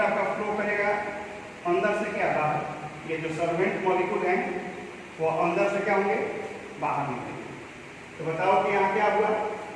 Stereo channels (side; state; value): both; identical; correlation 1.00